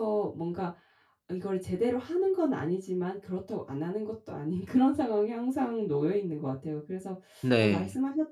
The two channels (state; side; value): identical; both; correlation 1.00